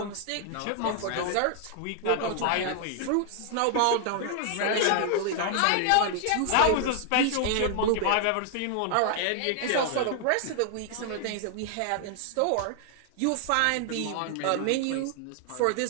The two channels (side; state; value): both; different; correlation 0.00